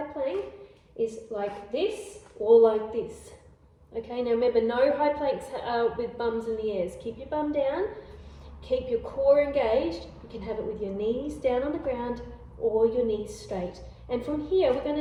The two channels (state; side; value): identical; both; correlation 1.00